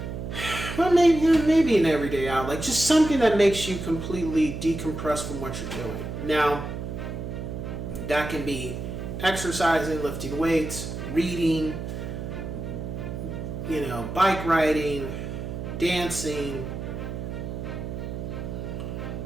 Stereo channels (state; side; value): noise; right; hum, 6 dB below the sound